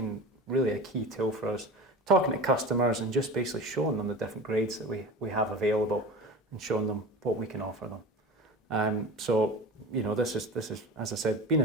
really a key tool for us, talking to customers and just basically showing them the different grades that we have available and showing them what we can offer them. So, you know, this is, as I said, been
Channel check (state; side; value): normal; both; correlation 0.32